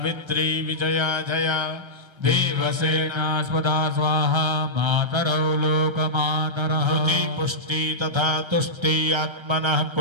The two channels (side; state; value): left; late; 1.3 ms